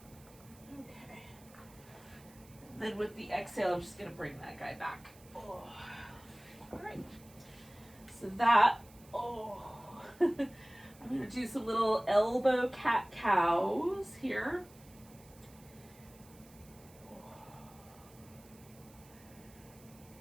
Okay. Then with the exhale, I'm just going to bring that guy back. Oh. All right. So that, oh. I'm going to do some little elbow cat-cows here.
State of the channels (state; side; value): noise; right; hiss, 24 dB below the sound